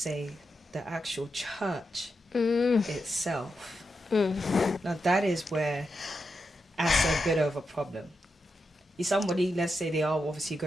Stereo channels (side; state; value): both; normal; correlation 0.86